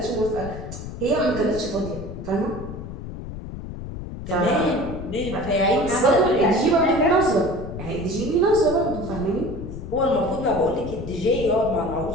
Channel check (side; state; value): left; noise; rumble, 9 dB below the sound